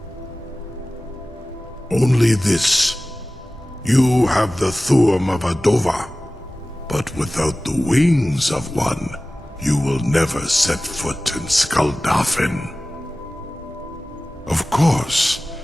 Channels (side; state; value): both; normal; correlation 0.97